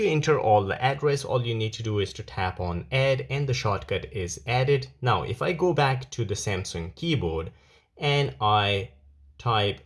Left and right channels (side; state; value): both; identical; correlation 1.00